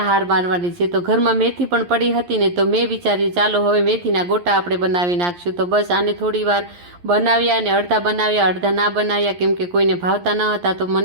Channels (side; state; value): left; late; 11 ms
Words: હાર મારવાની છે. તો ઘરમાં મેથી પણ પડી હતી ને તો મેં વિચાર્યું ચાલો હવે મેથીના ગોટા આપણે બનાવી નાખશું. તો બસ આને થોડી વાર બનાવ્યા અને અડધા બનાવ્યા, અડધા ના બનાવ્યા, કેમ કે કોઈને ભાવતા ન હતા. તો